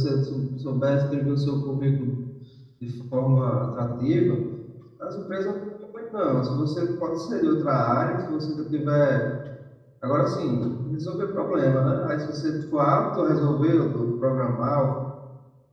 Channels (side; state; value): both; identical; correlation 1.00